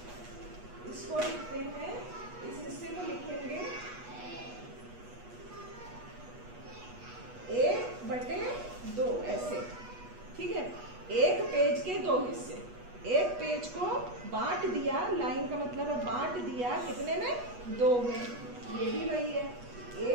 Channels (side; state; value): left; late; 8.2 ms